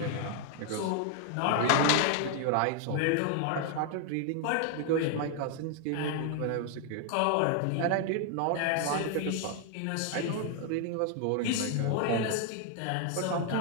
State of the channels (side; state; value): both; different; correlation 0.00